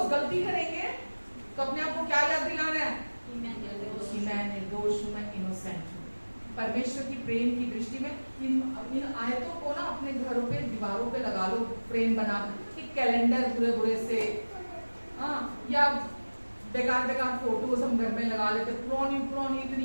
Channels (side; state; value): both; inverted; correlation -1.00